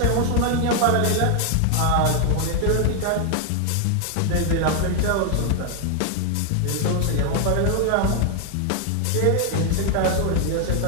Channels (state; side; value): different; both; correlation 0.00